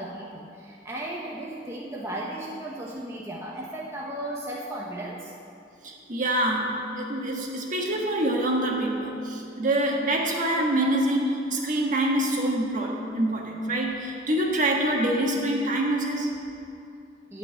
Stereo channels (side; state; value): both; normal; correlation 0.35